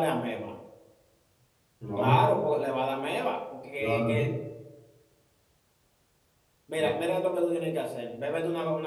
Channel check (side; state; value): both; identical; correlation 1.00